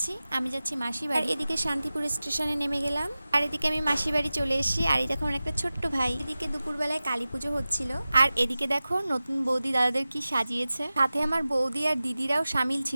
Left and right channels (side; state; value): both; inverted; correlation -0.96